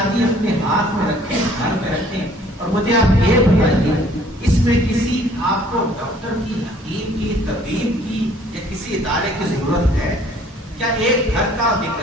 اپنے ہاتھ میں رکھیں، گھر میں رکھیں. اور مجھے آپ یہ بتائیے اس میں کسی آپ کو ڈاکٹر کی، حکیم کی، طبیب کی یا کسی ادارے کی ضرورت ہے؟ کیا ایک گھر کا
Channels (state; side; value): normal; both; correlation 0.57